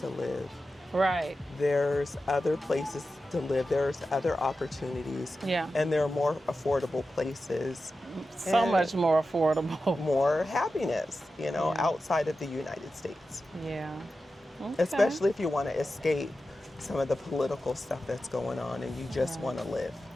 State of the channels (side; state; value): both; normal; correlation 0.92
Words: live. Right. There's other places to live. There's other opportunities. Yeah. And there are more affordable places. So and much more affordable. more happiness, outside of the United States. Yeah. Okay. Especially if you want to escape some of the political stuff that's going on and you just want to live.